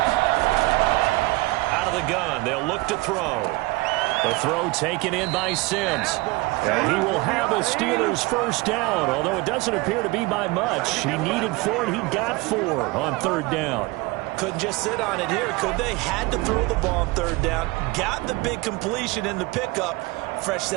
Gun. They'll look to throw. The throw taken in by Sims. And he will have a Steelers first down, although it doesn't appear to be by much. He needed 4, and he got 4 on 3rd down. Couldn't just sit on it here, could they? Had to throw the ball on 3rd down. Got the big completion in the pickup. Fresh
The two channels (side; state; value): left; quieter; 22.6 dB